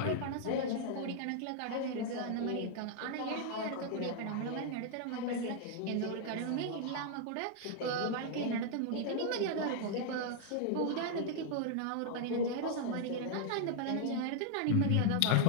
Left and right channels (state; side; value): different; both; correlation 0.00